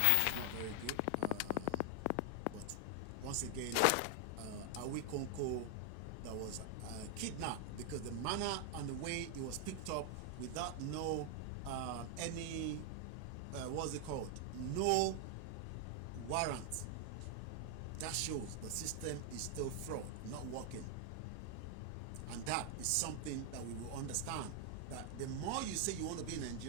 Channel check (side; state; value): both; different; correlation 0.00